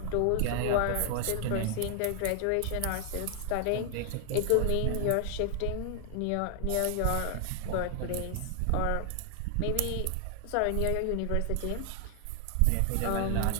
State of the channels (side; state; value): both; different; correlation 0.00